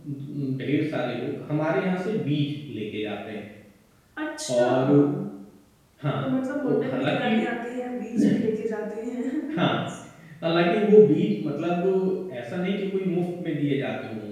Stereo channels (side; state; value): both; identical; correlation 1.00